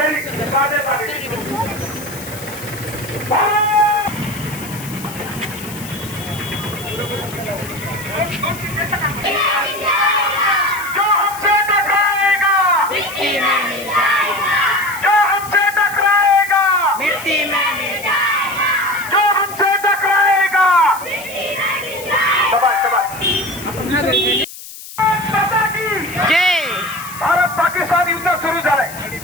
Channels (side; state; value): left; noise; hiss, 14 dB below the sound